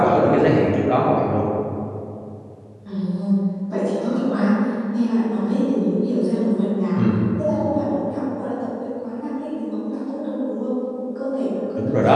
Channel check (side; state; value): both; identical; correlation 1.00